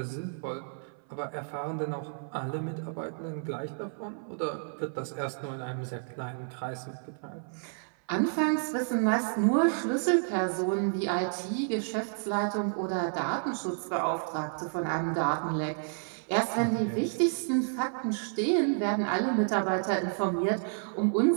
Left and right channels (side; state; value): left; silent; 57 dB below the other